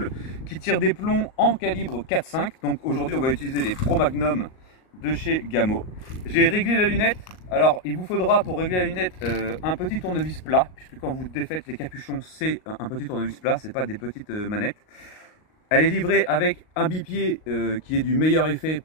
qui tire des plombs en calibre 4.5. Donc aujourd'hui, on va utiliser les Pro Magnum de chez Gamo. J'ai réglé la lunette. Alors il vous faudra pour régler la lunette un petit tournevis plat, puisque quand vous défaites les capuchons, c'est un petit tournevis plat, c'est pas des petites manettes. Elle est livrée avec un bipied qui est du meilleur effet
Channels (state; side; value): late; right; 38 ms